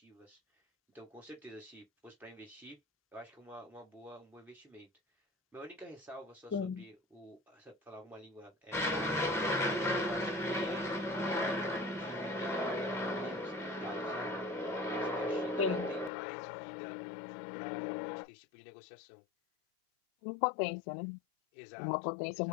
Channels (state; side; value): drops out; right; at 16.1 s